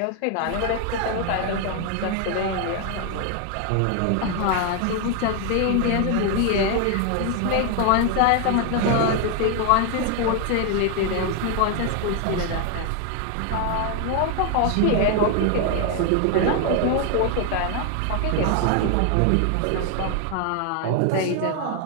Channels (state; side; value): different; both; correlation 0.00